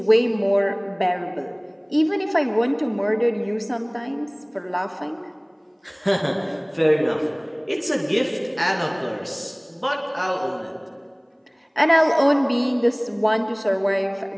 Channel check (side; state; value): both; identical; correlation 1.00